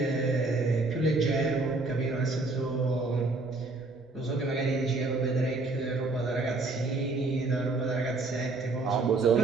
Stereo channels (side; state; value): left; quieter; 3.3 dB